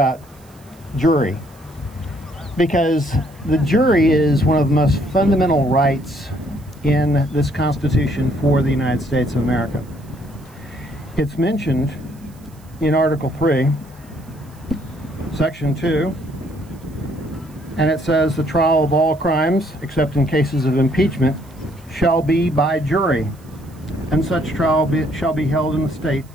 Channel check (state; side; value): noise; right; hiss, 28 dB below the sound